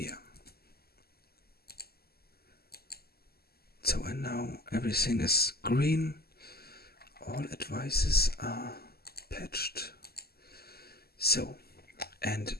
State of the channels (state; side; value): late; right; 0.46 ms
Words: So and now everything is green. All advices are patched. So, and